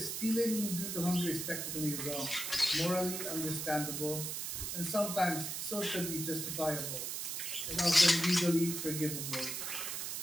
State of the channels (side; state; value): right; noise; hiss, 3 dB below the sound